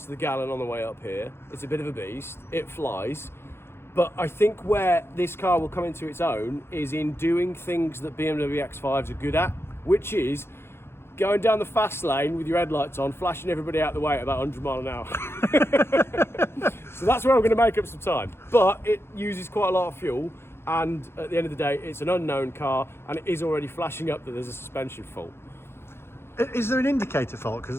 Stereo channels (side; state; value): right; late; 0.12 ms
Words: to the gallon on the way up here. It's a bit of a beast. It flies. But I think where this car will come into its own is in doing things that BMW X5s are good at, which is going down the fast lane with your headlights on, flashing everybody out the way at about 100 miles an hour. So that's where I'm going to make up some time. But it uses quite a lot of fuel, and at the end of the day, it's an unknown car, and it is already flashing up that there's a suspension fault. Is there an indicator fault? Because